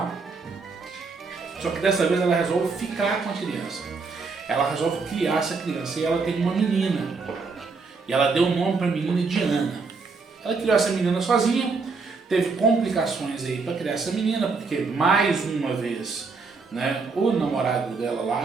Só que dessa vez ela resolve ficar com a criança. Ela resolve criar essa criança e ela tem uma menina. E ela deu o nome para a menina de Ana. Ela criou essa menina sozinha, teve complicações aí para criar essa menina, porque mais uma vez, né, o namorado dela lá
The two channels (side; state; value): left; quieter; 4.4 dB